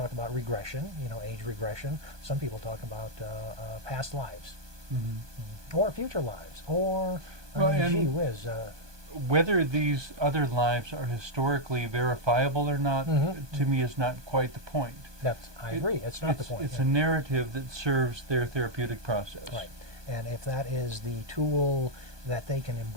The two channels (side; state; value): left; late; 1.2 ms